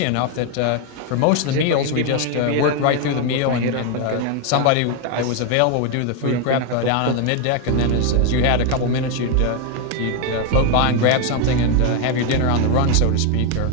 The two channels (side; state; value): both; different; correlation 0.01